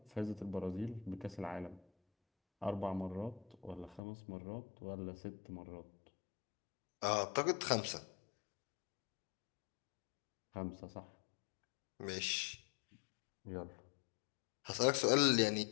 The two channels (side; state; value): right; drops out; at 4.0 s